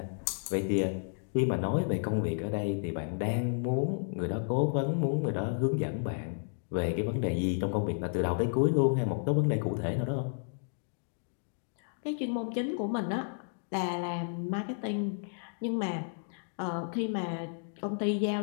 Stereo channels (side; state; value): right; silent; digital silence